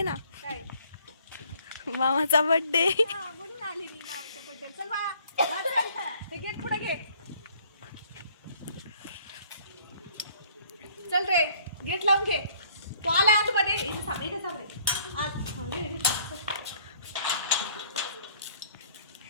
ना काय? मामाचा बर्थडे. हा म्हणून आली मी मामाच्या बड्डे. चल बा ते गेट पुढे घे. चल रे गेट लावून घे. तो आला आतमध्ये. इथे थांब इथे थांब रे.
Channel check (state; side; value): inverted; both; correlation -0.60